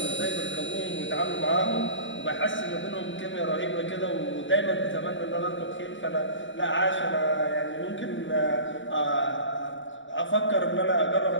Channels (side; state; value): right; late; 0.55 ms